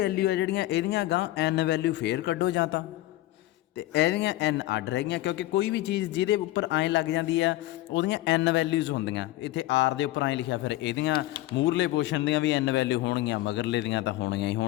ਆ ਜਿਹੜੀਆਂ ਇਹਦੀਆਂ ਗਾਂ ਐਨ ਵੈਲਿਊ ਫੇਰ ਕੱਢੋ ਜਾਂ ਤਾਂ, ਅਤੇ ਇਹਦੀਆਂ ਐਨ ਅੱਡ ਰਹਿ ਗਈਆਂ, ਕਿਉਂਕਿ ਕੋਈ ਵੀ ਚੀਜ਼ ਜਿਹਦੇ ਉੱਪਰ ਐਂ ਲੱਗ ਜਾਂਦੀ ਆ ਉਹਦੀਆਂ ਐਨ ਵੈਲਿਊਜ਼ ਹੁੰਦੀਆਂ। ਇੱਥੇ ਆਰ ਦੇ ਉੱਪਰ ਐਂ ਲਿਖਿਆ, ਫਿਰ ਇਹਦੀਆਂ ਮੂਹਰਲੇ ਪੋਰਸ਼ਨ ਦੀਆਂ ਵੀ ਐਨ ਵੈਲਿਊ ਹੋਣਗੀਆਂ, ਮਗਰਲੇ ਦੀਆਂ ਤਾਂ ਹੋਣਗੀਆਂ ਹੀ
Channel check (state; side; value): quieter; right; 16.6 dB